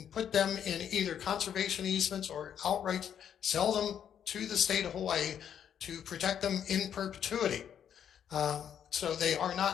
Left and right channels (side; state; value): right; quieter; 8.9 dB